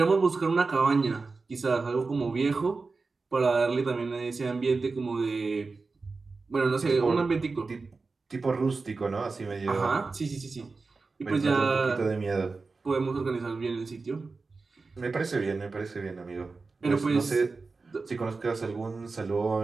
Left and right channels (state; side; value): quieter; left; 4.1 dB